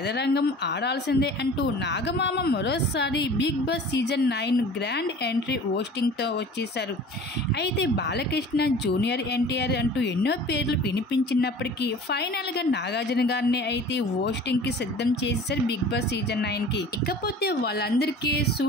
ఆడాల్సిందే అంటూ నాగమామ మరోసారి big boss season 9 grand entry హోస్టింగ్తో వచ్చేశారు. అయితే బాలకృష్ణ, జూనియర్ ఎన్టీఆర్ అంటూ ఎన్నో పేర్లు వినిపించినప్పటికీ ఫైనల్గా నాగార్జున గారిని అయితే హోస్టింగ్కి సిద్ధం చేసేశారు బిగ్ బాస్ సీజన్ 9కి. ఇకపోతే వాళ్ళందరికీ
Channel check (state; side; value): normal; both; correlation 0.43